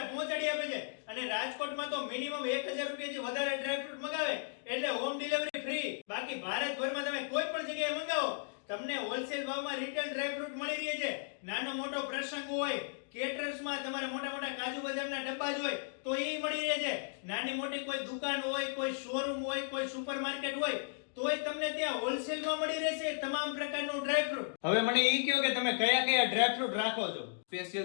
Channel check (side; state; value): right; silent; digital silence